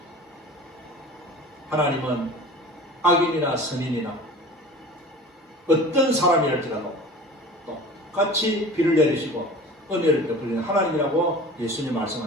하나님은 악인이나 선인이나 어떤 사람이랄지라도 똑같이 비를 내리시고 은혜를 베푸시는 하나님이라고 예수님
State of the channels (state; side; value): normal; both; correlation 0.40